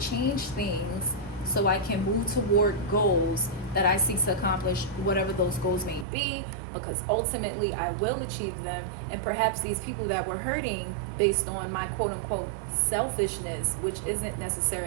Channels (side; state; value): left; drops out; at 6.1 s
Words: things so I can move toward goals that I seek to accomplish, whatever those goals may be, because ultimately I will achieve them. And perhaps these people that were hurting based on my quote unquote selfishness, which isn't